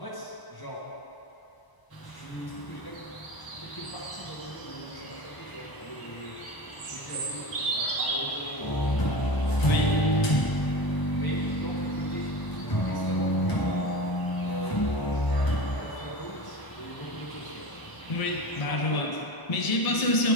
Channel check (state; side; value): late; right; 1.0 ms